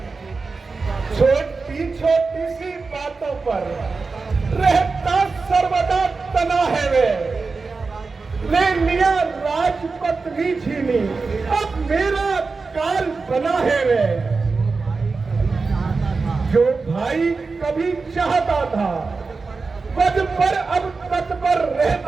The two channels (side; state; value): left; quieter; 4.2 dB